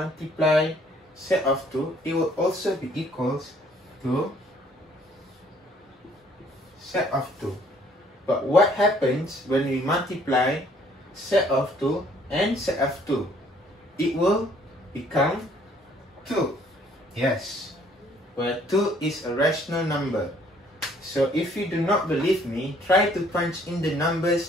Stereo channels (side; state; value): both; normal; correlation 0.61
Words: set of 2, it will also be equals to set of 2. But what happens when we multiply set of 2 and set of 2? It will become 2. Yes, where 2 is a rational number. So if you do not believe me, try to punch in the